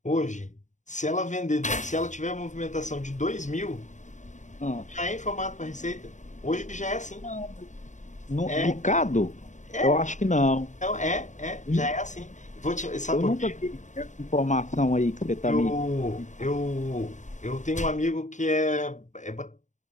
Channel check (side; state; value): right; late; 0.35 ms